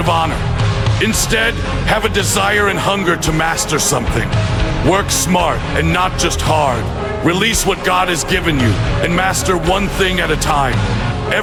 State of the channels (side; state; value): both; identical; correlation 1.00